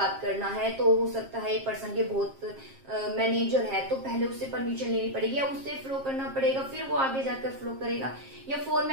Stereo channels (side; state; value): left; late; 7.5 ms